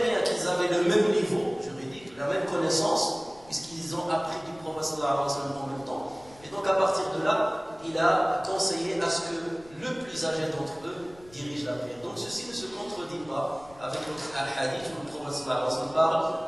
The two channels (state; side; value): noise; left; rumble, 24 dB below the sound